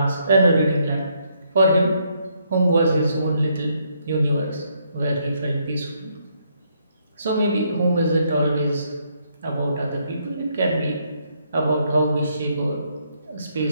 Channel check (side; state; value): both; inverted; correlation -0.73